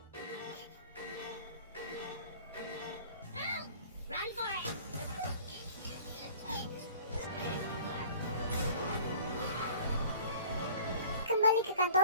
Run for it! Kembali ke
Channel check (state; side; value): inverted; both; correlation -0.46